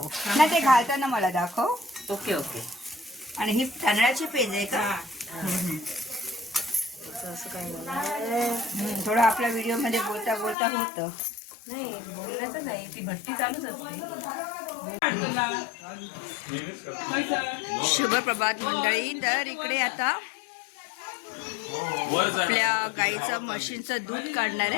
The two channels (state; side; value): drops out; right; at 10.6 s